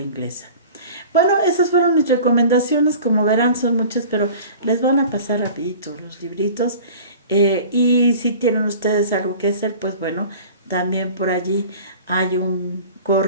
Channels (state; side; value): inverted; both; correlation -0.41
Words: inglesa. Bueno, esas fueron mis recomendaciones, como verán son muchas, pero les van a pasar rapidito los libritos. Y si tienen ustedes algo que hacer, pues bueno, también por allí hay un